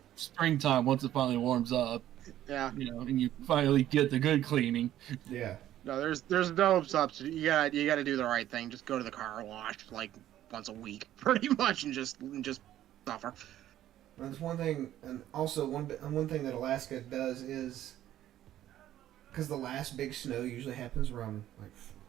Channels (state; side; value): quieter; left; 12.6 dB